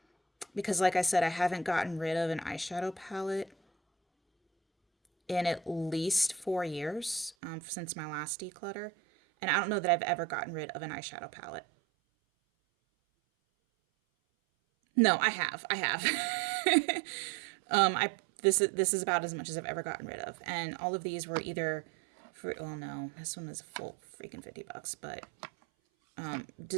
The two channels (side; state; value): left; drops out; at 7.4 s